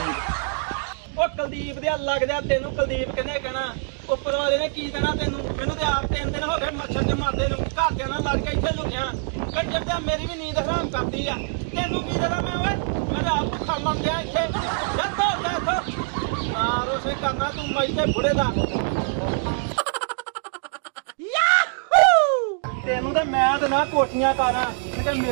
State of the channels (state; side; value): silent; left; 62 dB below the other